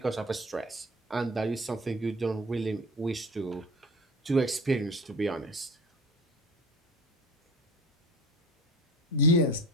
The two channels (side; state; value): both; normal; correlation 0.37